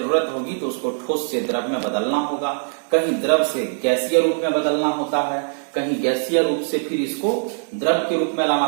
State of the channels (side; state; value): left; silent; 65 dB below the other